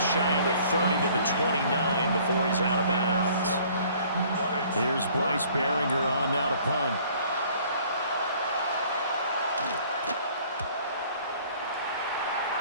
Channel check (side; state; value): both; inverted; correlation -0.55